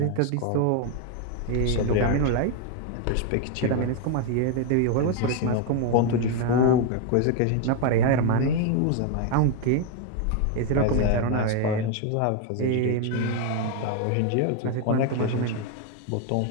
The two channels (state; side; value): different; both; correlation 0.01